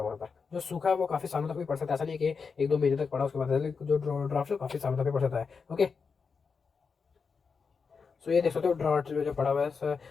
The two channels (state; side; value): quieter; right; 5.3 dB